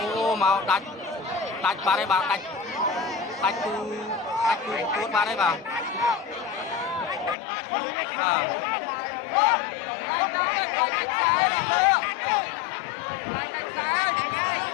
ូមកដាច់បាត់ហើយបាទដាច់គូពួតបាត់ហើយបាទ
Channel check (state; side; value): drops out; right; at 7.4 s